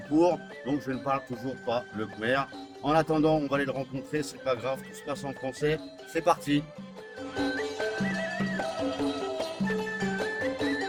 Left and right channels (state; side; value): identical; both; correlation 1.00